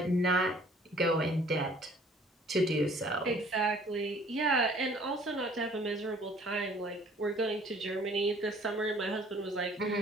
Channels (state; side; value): normal; both; correlation 0.55